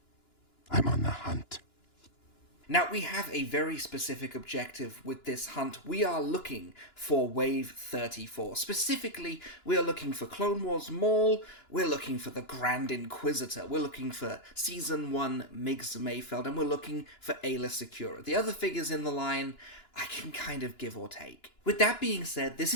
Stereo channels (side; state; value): right; late; 2.9 ms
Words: I'm on the hunt. Now, we have a very specific objective with this hunt. We are looking for Wave 34. Specifically, we are looking for Clone Wars Maul, we're looking for the Grand Inquisitor, we're looking for Season 1 Migs Mayfeld, and we're looking for Ayla Secura. The other figures in the line, I can kind of give or take. With that being said, this